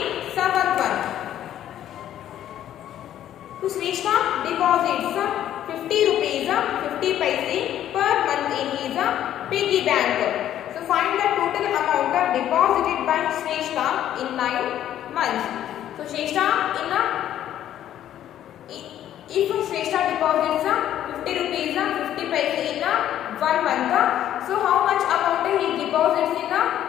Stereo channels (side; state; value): right; quieter; 11.5 dB